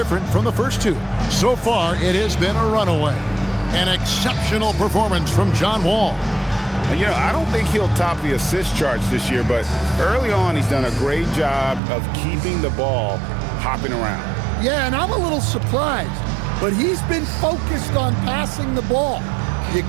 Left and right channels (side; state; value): left; drops out; at 11.8 s